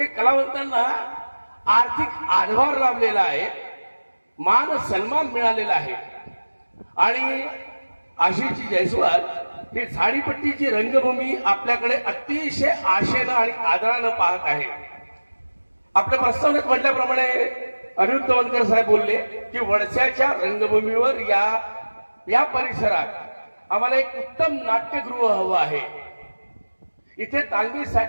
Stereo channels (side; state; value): both; inverted; correlation -1.00